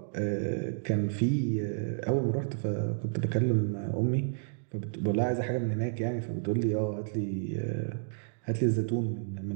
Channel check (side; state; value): left; silent; digital silence